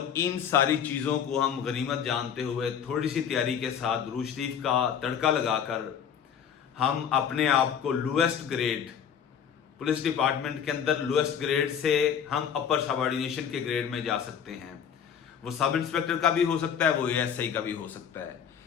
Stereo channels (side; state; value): right; quieter; 8.1 dB